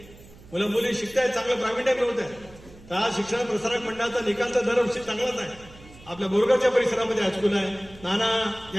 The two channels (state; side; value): noise; right; hum, 22 dB below the sound